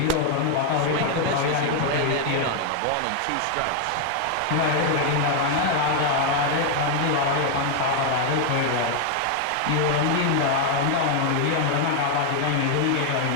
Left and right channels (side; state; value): both; different; correlation 0.01